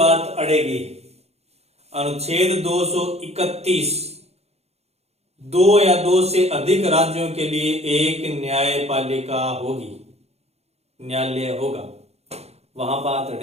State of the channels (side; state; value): left; late; 0.31 ms